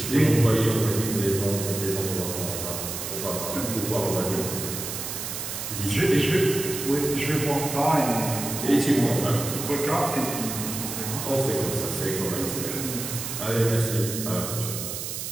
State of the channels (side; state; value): right; noise; hiss, 5 dB below the sound